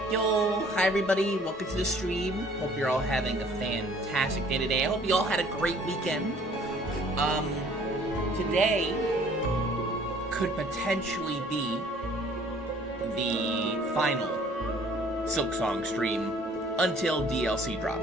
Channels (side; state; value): both; normal; correlation 0.55